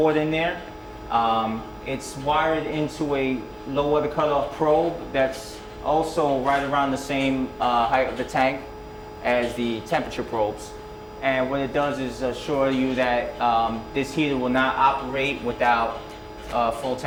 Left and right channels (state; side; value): identical; both; correlation 1.00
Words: in there. It's wired into a low water cutoff probe that's also right around the same height of the tank as the temperature probes. And what it does is assure you that this heater will not operate without a full